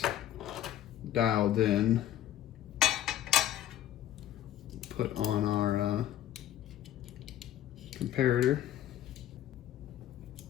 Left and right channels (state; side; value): quieter; right; 12.0 dB